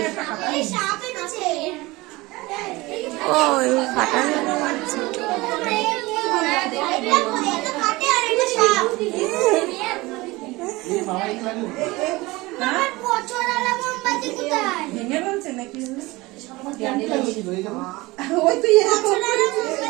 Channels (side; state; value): left; quieter; 21.5 dB